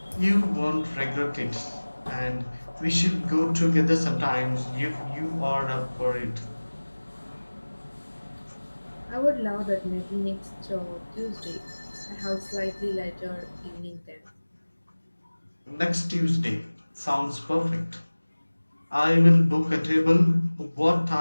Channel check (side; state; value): both; inverted; correlation -1.00